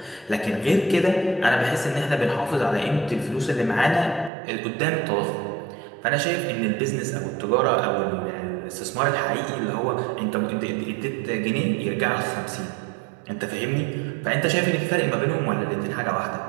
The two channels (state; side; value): drops out; left; at 4.3 s